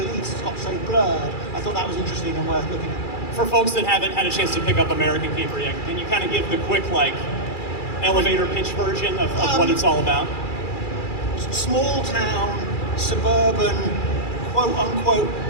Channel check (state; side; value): late; right; 2.3 ms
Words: has got so blurred. I thought that was interesting and worth looking at. For folks that haven't had a chance to pick up American Caper yet, can you kind of give the quick, elevator pitch version of what it's all about? Small town, suburban, quote unquote,